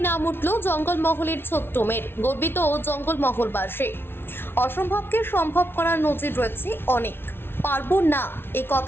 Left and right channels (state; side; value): late; right; 0.11 ms